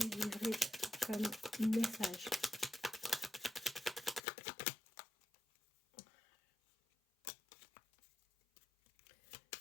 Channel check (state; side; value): drops out; right; at 4.2 s